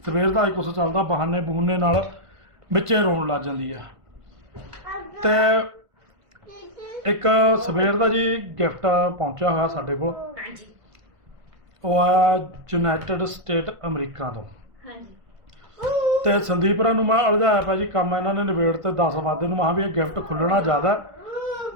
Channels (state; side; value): late; left; 1.5 ms